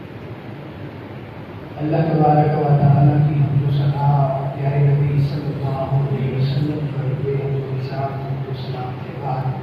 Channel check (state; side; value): identical; both; correlation 1.00